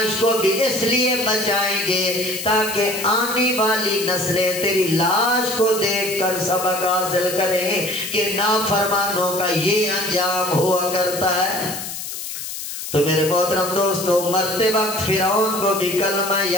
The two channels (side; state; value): left; noise; hiss, 8 dB below the sound